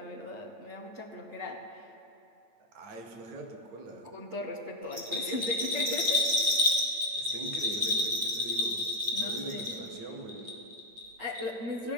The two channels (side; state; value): left; late; 8.9 ms